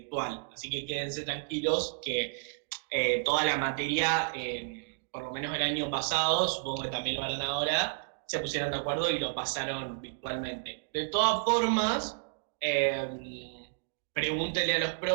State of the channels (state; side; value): silent; left; digital silence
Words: así que quédense tranquilos que toda la materia, por lo menos el año pasado, supongo que también lo harán ahora, se pusieron de acuerdo y lo pasaron virtualmente. De todas formas, pregúntenle a los